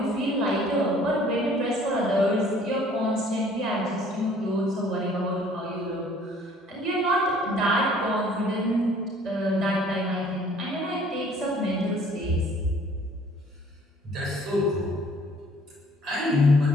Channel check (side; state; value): both; normal; correlation 0.56